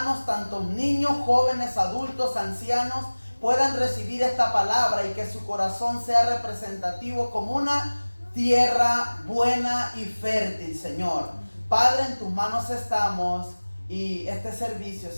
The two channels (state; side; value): inverted; both; correlation -1.00